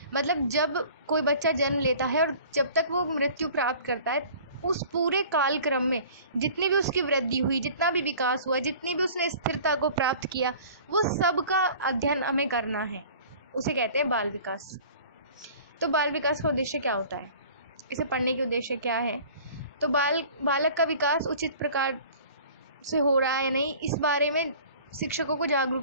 मतलब जब कोई बच्चा जन्म लेता है और जब तक वो मृत्यु प्राप्त करता है, उस पूरे कालक्रम में जितनी भी उसकी वृद्धि हुई, जितना भी विकास हुआ, जितनी भी उसने स्थिरता को प्राप्त किया, वो सब का अध्ययन हमें करना है, उसे कहते हैं बाल विकास। तो बाल विकास का उद्देश्य क्या होता है, इसे पढ़ने के उद्देश्य क्या है? तो बालक का विकास उचित प्रकार से हो रहा है नहीं, इस बारे में शिक्षकों को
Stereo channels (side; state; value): both; inverted; correlation -0.46